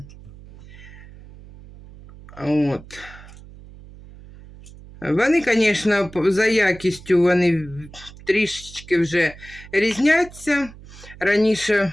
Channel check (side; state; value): right; noise; hum, 19 dB below the sound